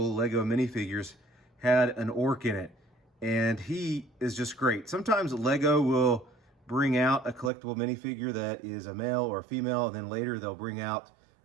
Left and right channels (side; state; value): left; drops out; at 7.5 s